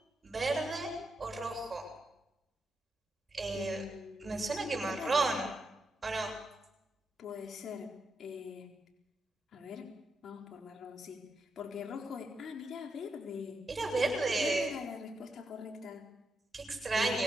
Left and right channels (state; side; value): normal; both; correlation 0.84